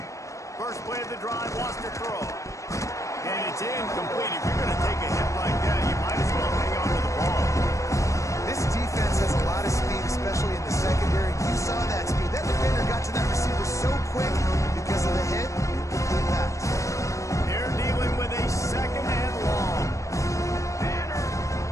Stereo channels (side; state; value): right; late; 0.15 ms